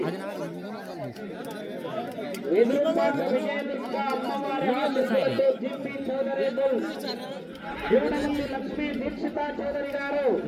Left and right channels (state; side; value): identical; both; correlation 1.00